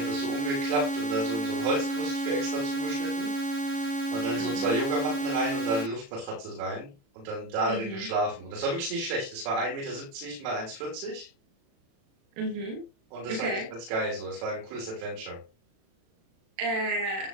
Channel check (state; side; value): late; left; 36 ms